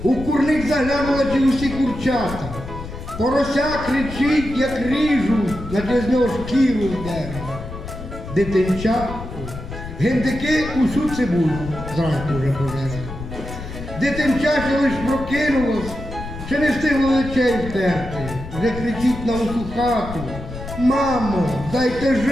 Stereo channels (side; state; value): left; noise; rumble, 10 dB below the sound